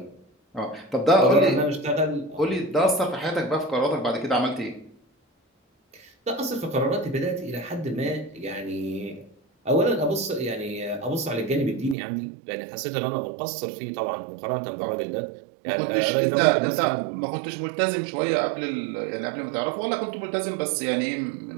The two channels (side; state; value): left; drops out; at 12.0 s